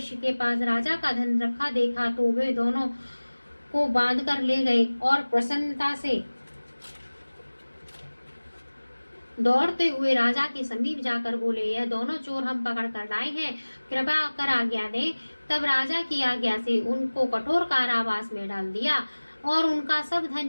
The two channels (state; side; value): inverted; both; correlation -1.00